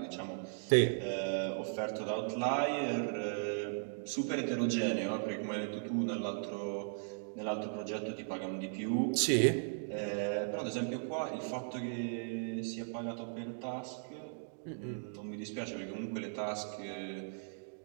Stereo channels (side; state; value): left; silent; digital silence